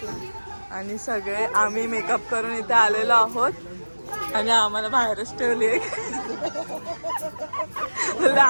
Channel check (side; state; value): both; inverted; correlation -1.00